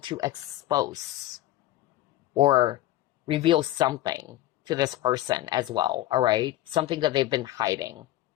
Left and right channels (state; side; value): quieter; right; 15.1 dB